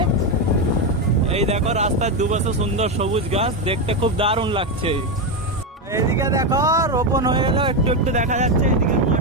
এই দেখো রাস্তার দুপাশে সুন্দর সবুজ গাছ, দেখতে খুব দারুণ লাগছে। এইদিকে দেখো রোপণ হয়ে গেল, একটু একটু দেখা যাচ্ছে। এইদিকে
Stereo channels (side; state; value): both; normal; correlation 0.09